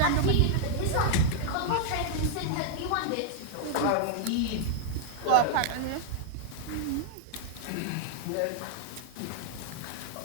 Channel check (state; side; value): different; both; correlation -0.01